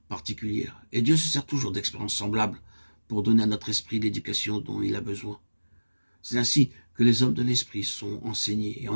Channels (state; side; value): inverted; both; correlation -1.00